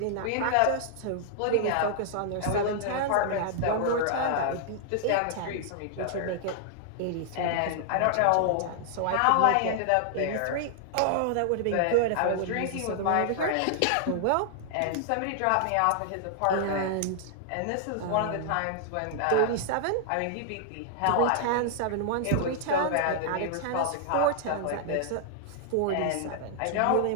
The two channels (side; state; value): both; different; correlation -0.01